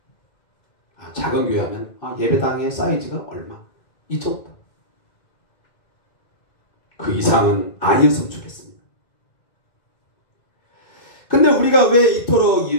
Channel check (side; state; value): right; late; 2.6 ms